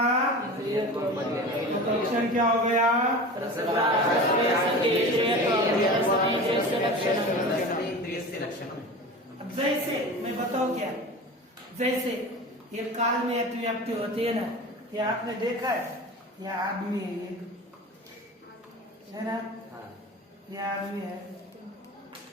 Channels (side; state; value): both; normal; correlation 0.33